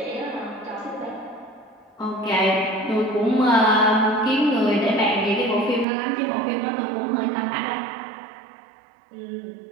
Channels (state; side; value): drops out; left; at 5.9 s